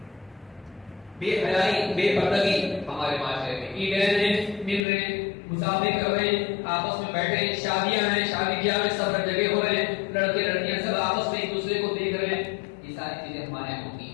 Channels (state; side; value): drops out; right; at 4.9 s